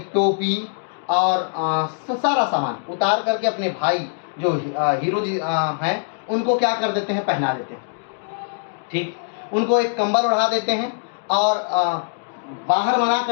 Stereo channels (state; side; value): silent; right; digital silence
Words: टोपी और सारा सामान उतार करके अपने भाई जो हीरो जी हैं, उनको क्या कर देते हैं, पहना देते हैं, ठीक। उनको एक कंबल उड़ा देते हैं और बाहर मना